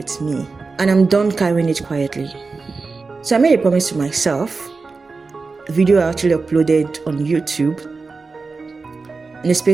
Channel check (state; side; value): quieter; left; 4.2 dB